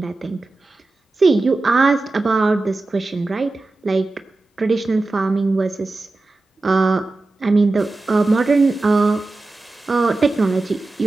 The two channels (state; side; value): quieter; left; 3.2 dB